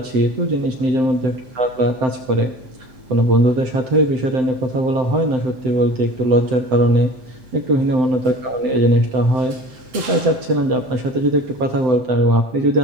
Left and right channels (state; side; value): late; left; 7.8 ms